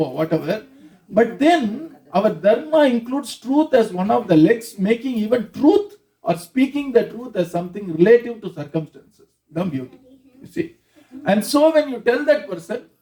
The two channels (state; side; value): identical; both; correlation 1.00